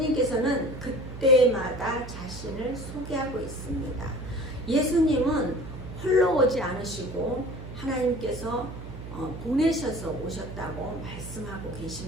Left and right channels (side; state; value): right; noise; hum, 11 dB below the sound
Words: 그때마다 자신을 소개하고 있습니다. 예수님은 홀로 오지 않으시고 하나님께서 보내셔서 오셨다고 말씀하고